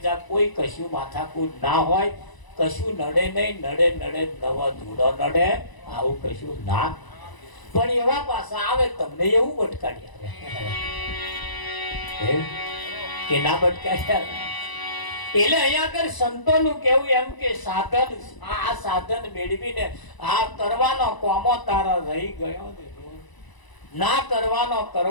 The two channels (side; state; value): right; late; 1.0 ms